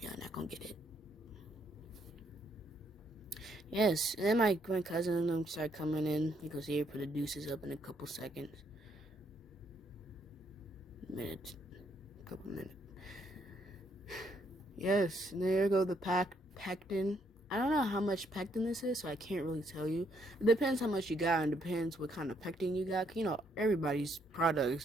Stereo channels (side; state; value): both; normal; correlation 0.72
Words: y'all not gonna get it. Yes, and then my cousin and them start coming in. You can see her put the deuces up in a couple seconds. Couple minutes. Yes, and there go the pectin. I don't know how much pectin this is, so I can't really tell you. It depends how much you got, and depends what kind of pectin you got. You know, everybody's product